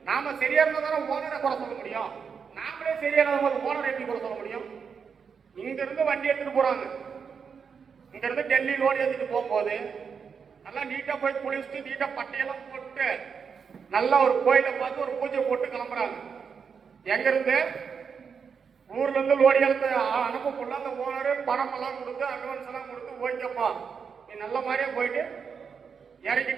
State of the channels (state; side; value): quieter; left; 6.3 dB